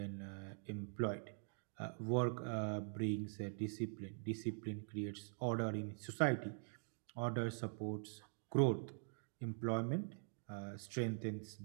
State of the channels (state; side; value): silent; left; digital silence